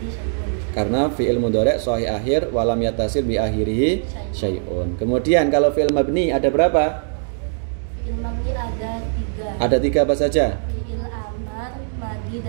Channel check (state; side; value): silent; left; digital silence